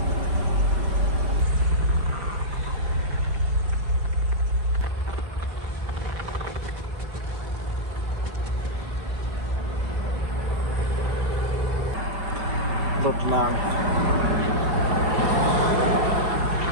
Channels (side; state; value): left; late; 4.6 ms